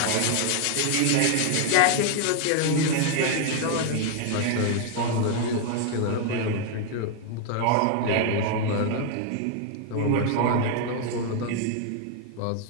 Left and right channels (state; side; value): different; both; correlation 0.00